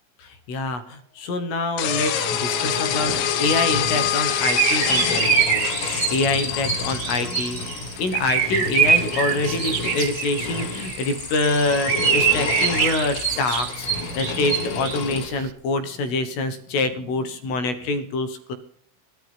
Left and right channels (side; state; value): right; late; 16 ms